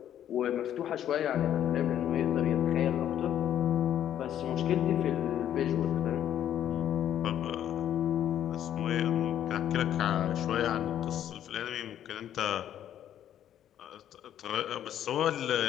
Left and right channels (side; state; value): right; quieter; 10.7 dB